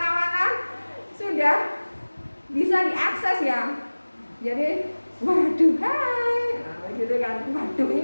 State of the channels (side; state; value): both; inverted; correlation -1.00